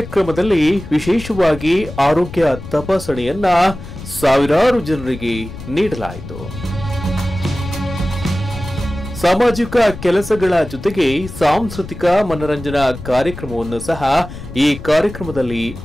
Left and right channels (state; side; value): noise; left; rumble, 12 dB below the sound